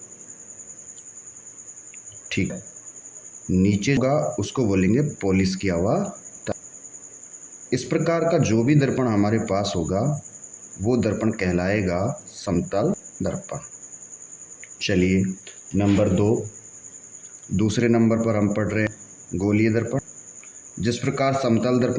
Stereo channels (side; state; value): both; identical; correlation 1.00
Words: ठीक। नीचे का उसको बोलेंगे पॉलिश किया हुआ तल। इस प्रकार का जो भी दर्पण हमारे पास होगा वो दर्पण कहलाएगा समतल दर्पण। चलिए नंबर 2, दूसरे नंबर पर हम पढ़ रहे हैं गोलीय दर्पण। जिस प्रकार समतल